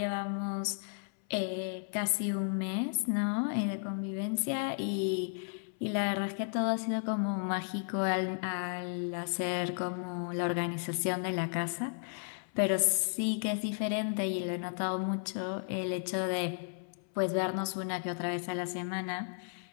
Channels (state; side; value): silent; right; 55 dB below the other